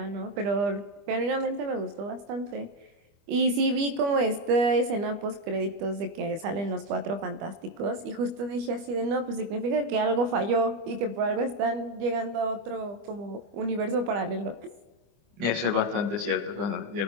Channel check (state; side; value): late; left; 25 ms